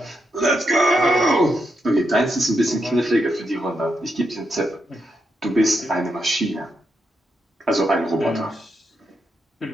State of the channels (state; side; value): normal; both; correlation 0.82